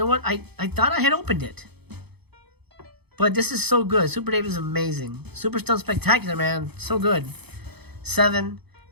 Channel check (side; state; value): left; late; 0.98 ms